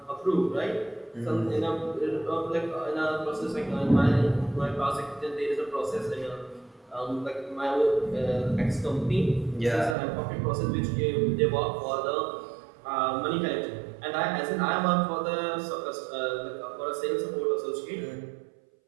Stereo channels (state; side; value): drops out; left; at 10.0 s